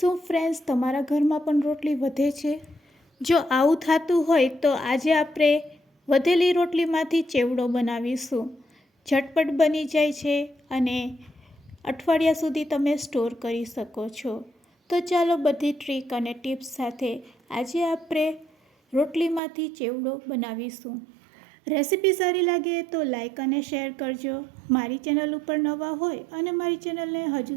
ફ્રેન્ડ્સ તમારા ઘરમાં પણ રોટલી વધે છે? જો આવું થતું હોય તો આજે આપણે વધેલી રોટલીમાંથી ચેવડો બનાવીશું। ઝટપટ બની જાય છે અને અઠવાડિયા સુધી તમે સ્ટોર કરી શકો છો। તો ચાલો બધી ટ્રીક અને ટિપ્સ સાથે આજે આપણે રોટલીમાંથી ચેવડો બનાવીશું। રેસીપી સારી લાગે તો લાઈક અને શેર કરજો। મારી ચેનલ ઉપર નવા હોય અને મારી ચેનલને હજુ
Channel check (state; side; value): drops out; left; at 19.4 s